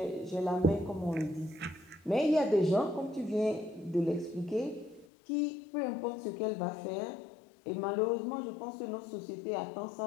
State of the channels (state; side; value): drops out; right; at 5.1 s